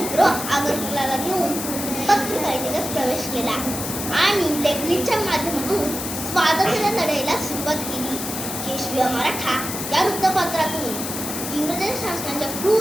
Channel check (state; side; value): noise; left; hiss, 6 dB below the sound